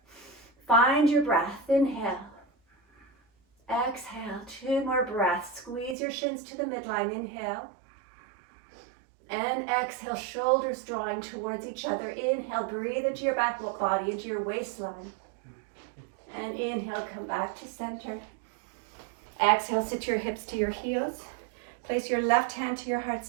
Find your breath. Inhale. Exhale. 2 more breaths. Squeeze your shins to the midline. Inhale. And exhale. Shoulders drawing towards each other. Inhale. Breathe into your back body, into your waistline. And inhale. Come back to center. Exhale. Sit your hips to your heels. Place your left hand to your heart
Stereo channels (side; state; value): left; drops out; at 6.0 s